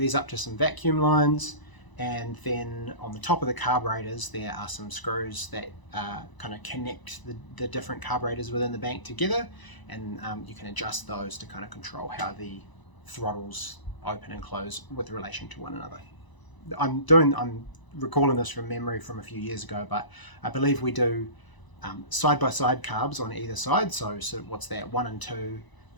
up to some vacuum lines, and then on the top of the carburetors there are some screws that kind of connect the different carburetors within the bank together, and you can adjust those to kind of control how the throttles open and close with relation to one another. I'm recalling this from memory from a few years ago, but I believe we do side-by-side carbs on either side. So what's that, 1 and 2,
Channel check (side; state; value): right; late; 1.0 ms